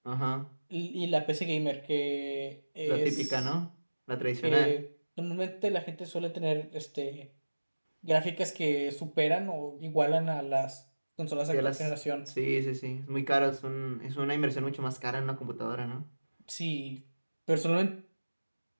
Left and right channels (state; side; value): inverted; both; correlation -1.00